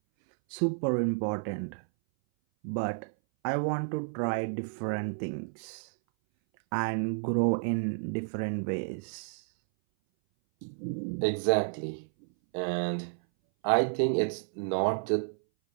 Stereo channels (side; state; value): left; silent; 57 dB below the other